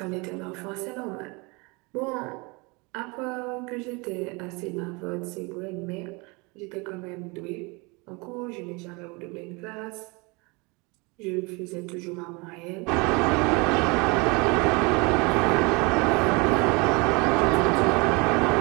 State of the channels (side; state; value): left; quieter; 27.8 dB